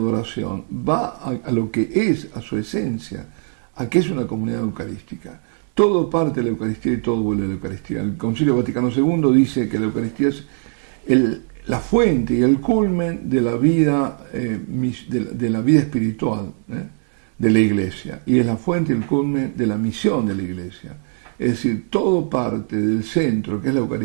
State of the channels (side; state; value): left; silent; 59 dB below the other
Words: va a lo que es, a su esencia, a que es una comunidad eucarística. Todo parte de la Eucaristía y todo vuelve a la Eucaristía. El Concilio Vaticano II dice que la Eucaristía es la fuente y el culmen de la vida, de la vida espiritual de la Iglesia, y es la fuente y el culmen de la misión de la Iglesia. Es decir, todo parte del centro, que es la